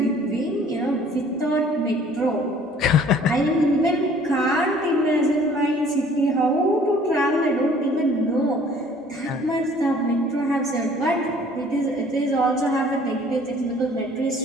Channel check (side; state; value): both; normal; correlation 0.55